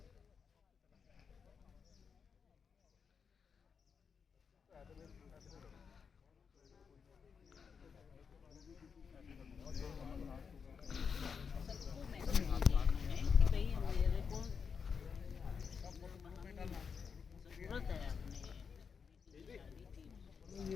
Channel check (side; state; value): right; quieter; 6.1 dB